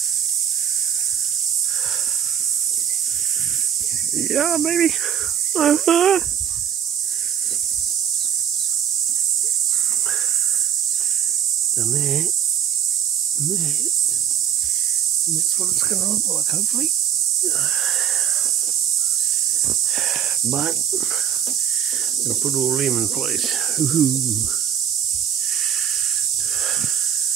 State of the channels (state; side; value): quieter; left; 9.0 dB